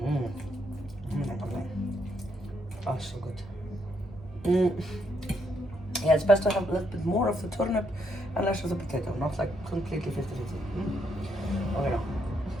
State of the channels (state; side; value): normal; both; correlation 0.75